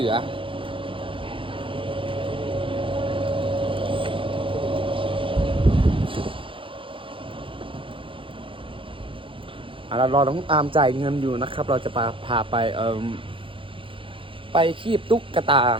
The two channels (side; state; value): left; late; 0.25 ms